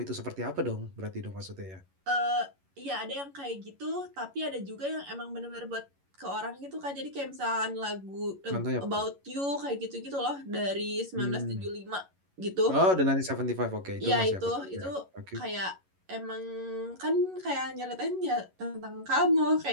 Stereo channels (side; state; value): left; late; 11 ms